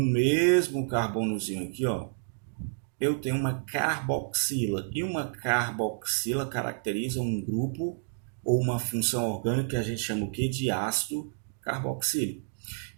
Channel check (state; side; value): silent; left; digital silence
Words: mesmo carbonozinho aqui, ó, eu tenho uma carboxila. E uma carboxila caracteriza um grupo ou uma função orgânica que a gente chama o quê? De ácido carboxílico.